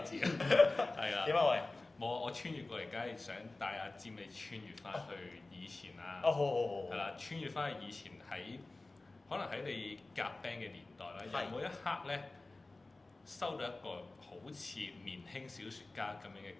字你知啊。係啊。點啊喂？冇啊！我穿越過嚟，梗係想帶阿占你穿越翻去以前啦。好。係啦，穿越翻去以前可能喺你夾 band 嘅年代啦，有冇一刻咧收到一個好似年輕小説家咁樣嘅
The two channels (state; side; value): quieter; right; 3.1 dB